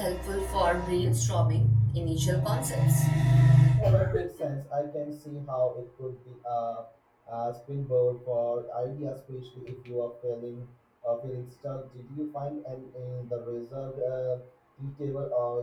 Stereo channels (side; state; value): both; identical; correlation 1.00